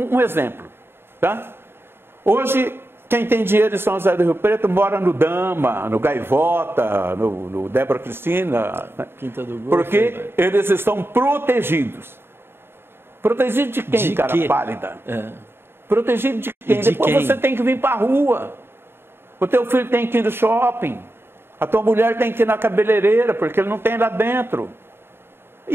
exemplo. Tá? Hoje, quem tem dinheiro em São José do Rio Preto mora no Dama, no Gaivota, no Débora Cristina. Né? Quinta do Golfo, porque eles estão protegidos. Protegidos de quem, cara pálida? Protegido de quem? Depois você tem que vir para a rua. O teu filho tem que ir no shopping. A tua mulher tem que ir na cabeleireira, porque ele não tem lá dentro.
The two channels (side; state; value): left; late; 0.11 ms